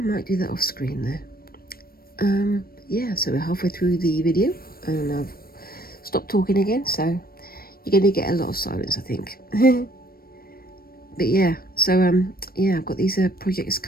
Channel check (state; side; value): late; right; 0.44 ms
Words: do that off screen there. Yeah, so we're halfway through the video and I've stopped talking again, so you're going to get a lot of silence, I think. But yeah, so yeah, I've got these projects